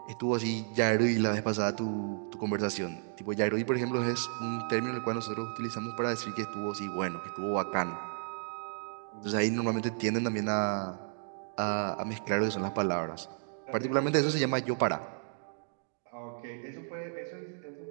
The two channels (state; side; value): silent; left; digital silence